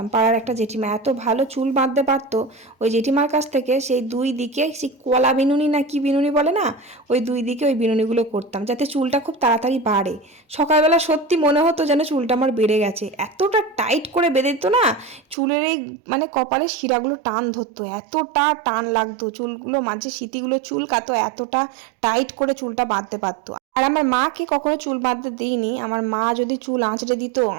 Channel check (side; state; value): left; drops out; at 15.4 s